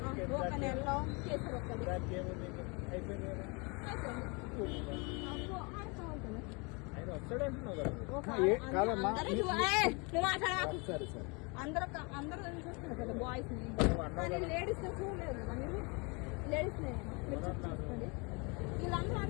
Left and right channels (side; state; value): right; quieter; 30.4 dB